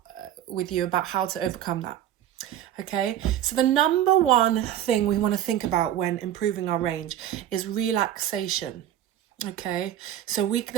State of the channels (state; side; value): quieter; left; 11.6 dB